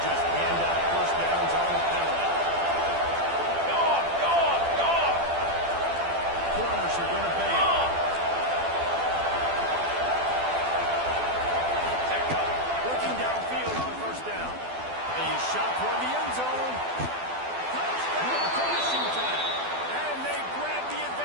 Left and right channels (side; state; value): left; late; 12 ms